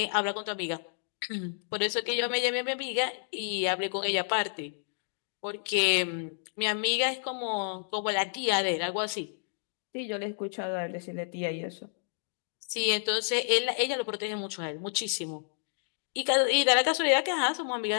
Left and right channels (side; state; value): right; silent; digital silence